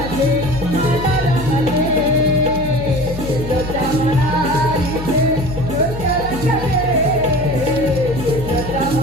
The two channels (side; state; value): left; noise; hum, 9 dB below the sound